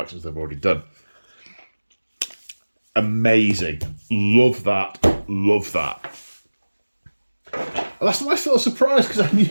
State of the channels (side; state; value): both; inverted; correlation -1.00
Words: they've already done. Amazing. Love that. And that's a nice little surprise, because I